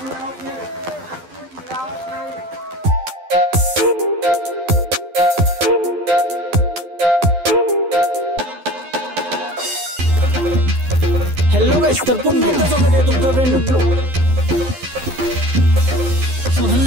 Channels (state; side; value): late; left; 12 ms